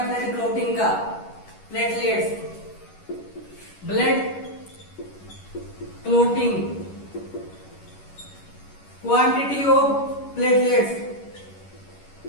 ब्लड क्लॉटिंग का। Platelets, blood clotting, quantity of platelets.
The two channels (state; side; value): late; right; 11 ms